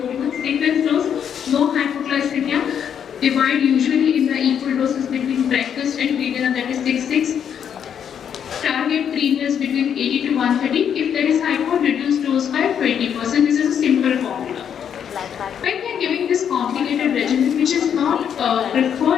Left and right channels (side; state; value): right; quieter; 8.4 dB